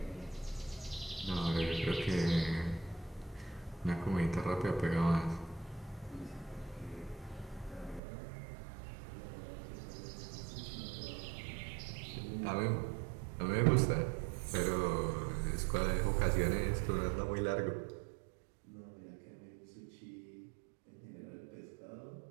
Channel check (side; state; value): left; drops out; at 8.0 s